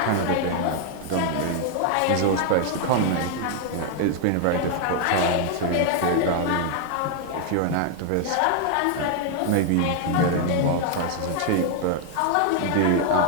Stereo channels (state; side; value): different; both; correlation 0.00